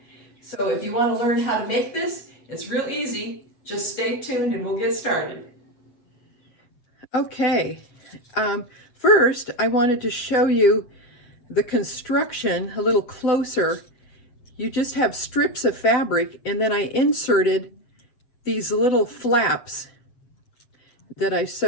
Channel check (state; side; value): late; right; 8.0 ms